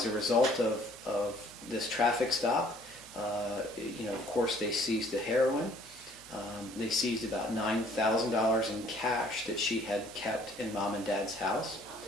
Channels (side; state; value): both; normal; correlation 0.59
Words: a result of this traffic stop, of course they seized the heroin. They seized about $9,000 in cash that she had kept in Mom and Dad's house.